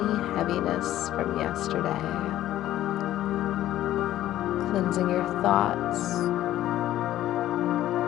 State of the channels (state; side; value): quieter; right; 13.4 dB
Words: heaviness from yesterday, cleansing your thoughts,